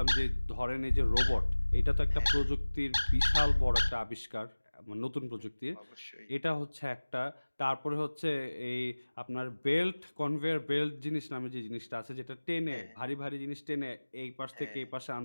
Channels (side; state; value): both; inverted; correlation -1.00